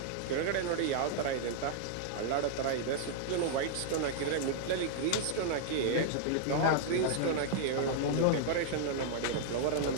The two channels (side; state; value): both; different; correlation -0.01